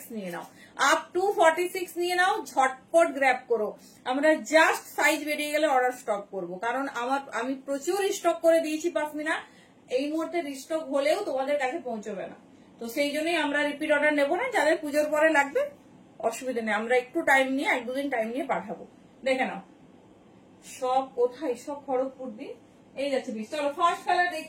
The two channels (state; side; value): identical; both; correlation 1.00